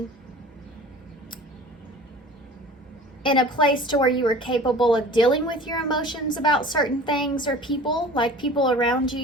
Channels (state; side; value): normal; both; correlation 0.42